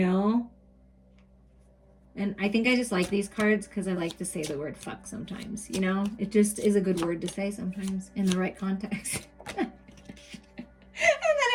And I think I just like these cards because I like to say the word fuck sometimes, you know. It just is a good word to say sometimes in the right context. And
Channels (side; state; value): both; identical; correlation 1.00